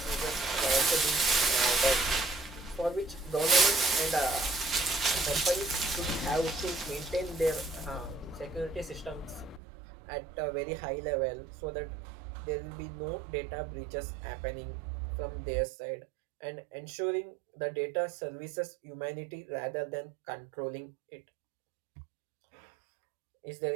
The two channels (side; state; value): left; drops out; at 9.6 s